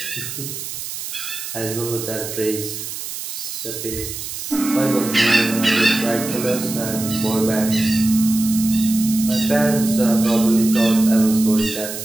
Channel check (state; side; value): noise; right; hiss, 8 dB below the sound